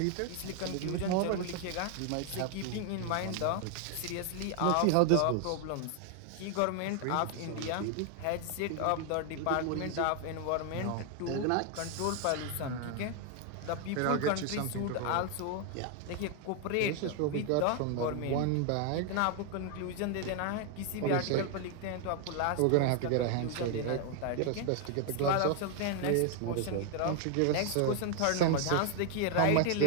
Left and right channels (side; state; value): both; different; correlation 0.00